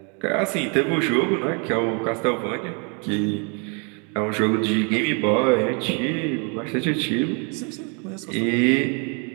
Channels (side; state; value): left; quieter; 35.9 dB